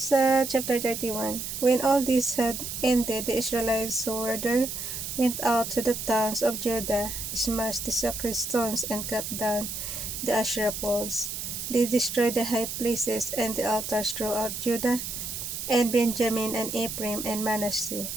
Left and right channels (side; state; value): right; noise; hiss, 6 dB below the sound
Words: chapter 31, when all this had ended, the Israelites who were there went out to the towns of Judah, smashed the sacred stones, and cut down the Asherah poles. They destroyed the high places and the altars throughout Judah and Benjamin and Ephraim and Manasseh.